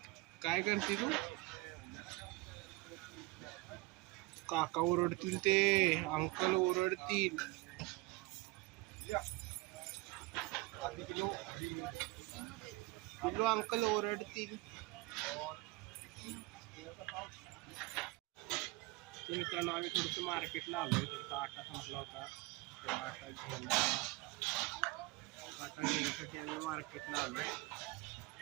काय करते तू? काका ओरडतील, ते अंकल ओरडतील. पिल्लू अंकल ओरडतील. तर मित्रांनो, आम्ही थोडंसं मार्केटला आलोय. थोडासा आटा संपला होता, तो आटा घेण्यासाठी आम्ही मार्केटला आलोय.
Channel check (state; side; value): quieter; left; 21.9 dB